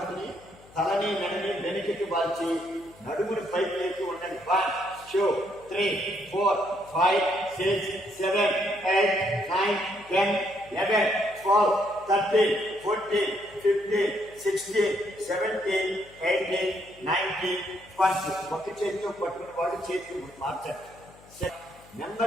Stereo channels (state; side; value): noise; left; hum, 25 dB below the sound